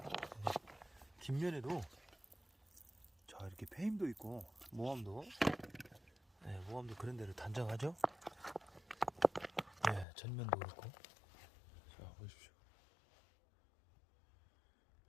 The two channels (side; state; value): right; drops out; at 10.1 s